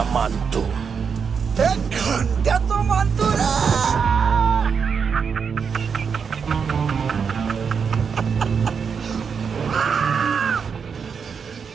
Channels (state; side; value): quieter; left; 6.3 dB